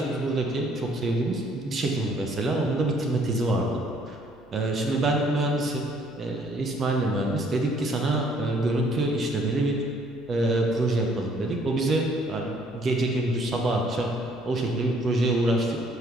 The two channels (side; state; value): right; noise; hum, 30 dB below the sound